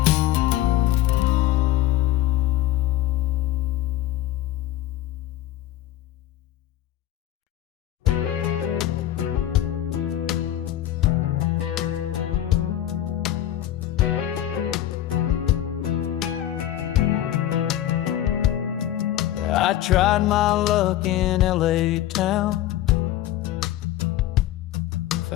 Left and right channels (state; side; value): quieter; right; 13.2 dB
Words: I tried my luck in LA town.